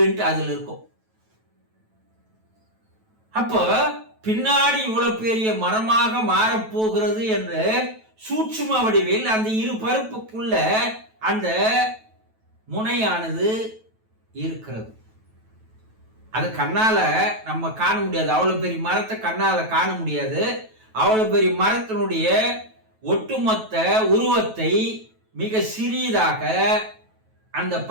அதில் இருக்கும். அப்போ பின்னாடி இவ்வளவு பெரிய மரமாக மாறப்போகிறது என்று சூட்சும வடிவில் அந்த இரு பருப்புக்குள்ள அந்த முனையானது இருக்கிறது. அது கண்ணால நம்ம காண முடியாது. அவ்வளவு பெரிய மரத்தை கண்ணால காண முடியாது. அவ்வளவு பெரிய மரத்தினுடைய ஒட்டுமொத்த உருவத்தை மிக சிறியதாக அந்த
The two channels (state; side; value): late; left; 9.2 ms